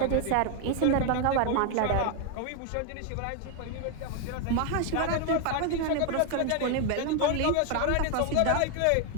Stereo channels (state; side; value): different; both; correlation 0.01